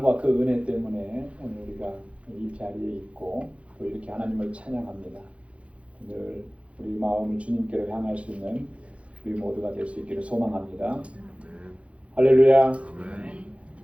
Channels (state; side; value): late; left; 0.062 ms